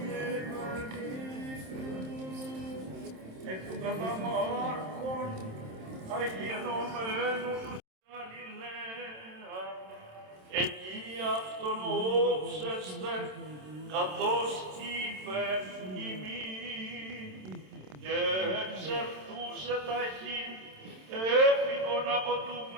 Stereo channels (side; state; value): left; late; 27 ms